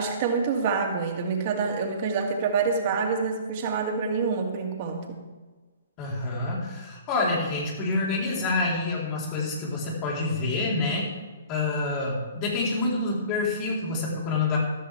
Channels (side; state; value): both; inverted; correlation -0.42